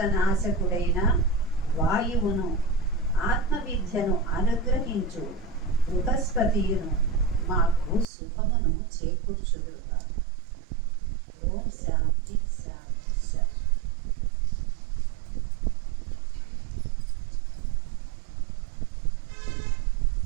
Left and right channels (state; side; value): drops out; left; at 8.1 s